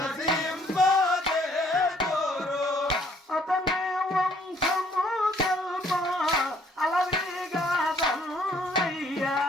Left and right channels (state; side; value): normal; both; correlation 0.63